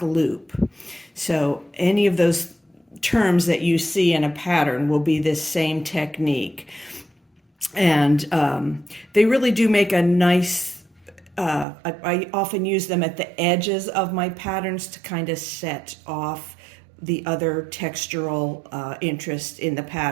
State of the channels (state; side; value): drops out; left; at 11.7 s